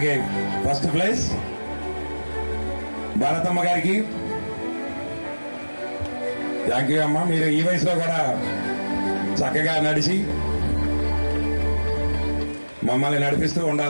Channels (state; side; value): inverted; both; correlation -1.00